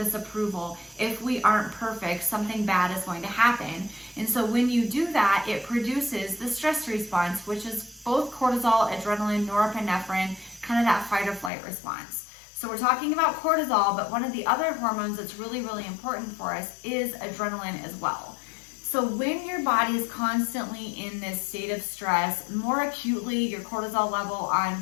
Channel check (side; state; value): right; drops out; at 11.5 s